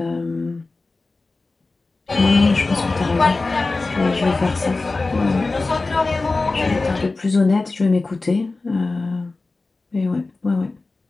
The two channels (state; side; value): quieter; right; 3.5 dB